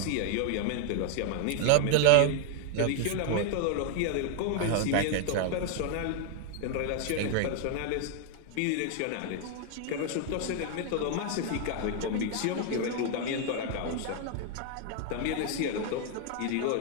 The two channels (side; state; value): both; different; correlation 0.00